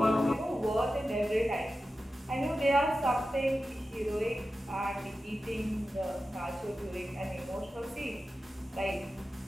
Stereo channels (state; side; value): normal; both; correlation 0.93